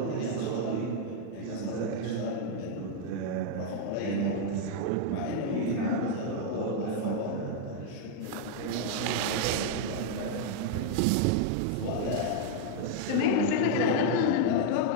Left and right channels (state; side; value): different; both; correlation -0.01